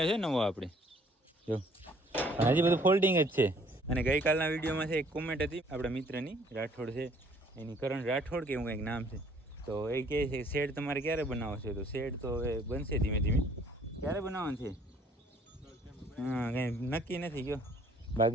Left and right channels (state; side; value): normal; both; correlation 0.59